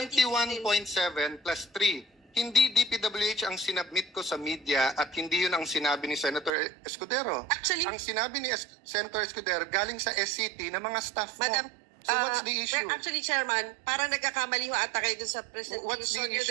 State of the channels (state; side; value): drops out; left; at 6.5 s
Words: plus 3. Hindi DPWH ang sinabmit ko sa media at hindi yun ang sinabi ni Senator Escudero. Actually, ang sinabi ni Senator Escudero galing sa SCT na mga staff mo. Madam, So what's the issue? Actually, Chairman, parang nagkakamali ho ata kayo dun sa presentation. What's the nyo